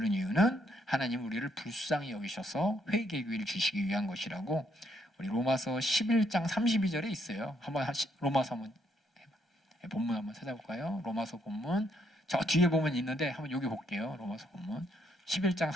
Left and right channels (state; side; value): normal; both; correlation 0.73